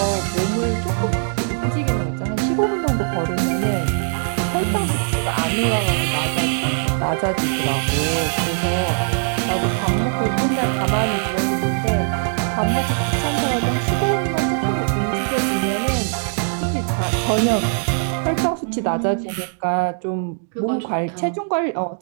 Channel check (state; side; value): silent; left; 63 dB below the other